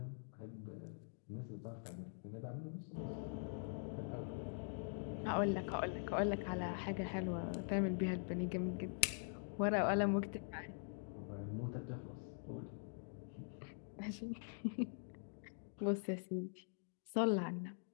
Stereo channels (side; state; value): right; silent; digital silence